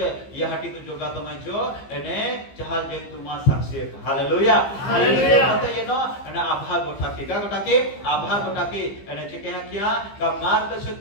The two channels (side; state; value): right; late; 15 ms